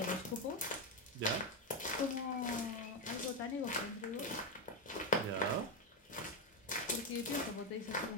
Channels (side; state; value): both; normal; correlation 0.09